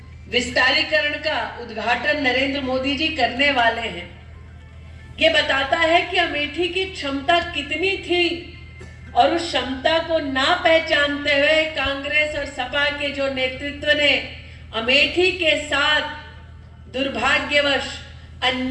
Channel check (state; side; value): identical; both; correlation 1.00